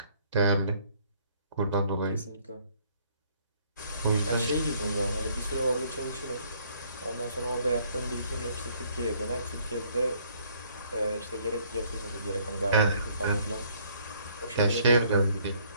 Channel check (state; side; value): inverted; both; correlation -0.63